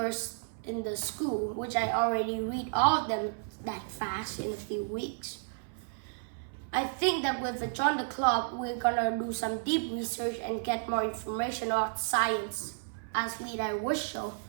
in the school, which I already read all of them that fast in a few weeks. I think that with Join the Club, we're gonna do some deep research and get more information about science, as Lead wish so.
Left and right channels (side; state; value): left; silent; 56 dB below the other